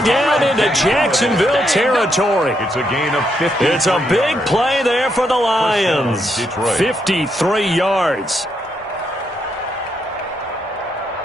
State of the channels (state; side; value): normal; both; correlation 0.78